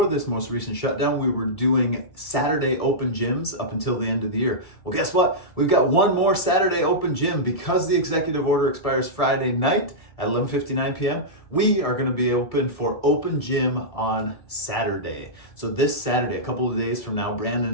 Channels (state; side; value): late; right; 1.7 ms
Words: this most recent shutdown, we were doing Saturday open gyms up until the end of the year. Well, guess what? We've got one more Saturday open gym because the executive order expires Friday night at 11:59 p.m. We are going to be open for open gym on Saturday. So this Saturday, a couple of days from now,